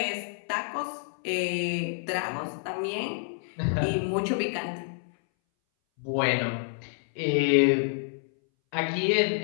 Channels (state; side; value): silent; right; 59 dB below the other